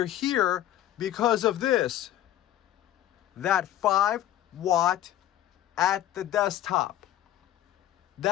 here because of this, that 5-watt at the desktop.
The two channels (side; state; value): right; quieter; 12.5 dB